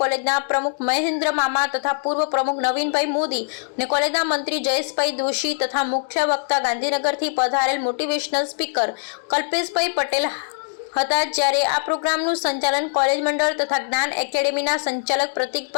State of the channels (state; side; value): silent; right; digital silence